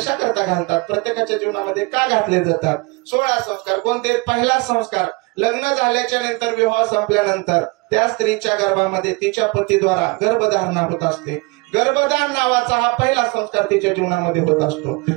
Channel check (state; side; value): quieter; left; 27.0 dB